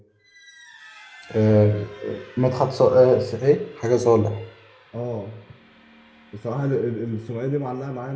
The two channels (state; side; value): identical; both; correlation 1.00